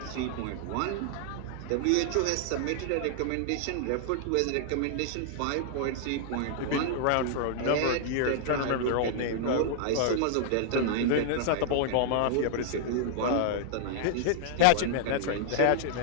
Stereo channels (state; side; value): different; both; correlation -0.01